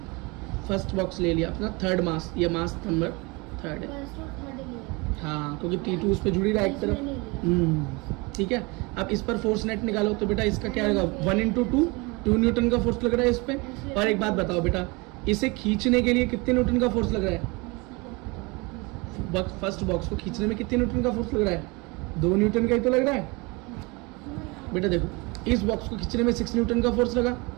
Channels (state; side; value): quieter; left; 26.7 dB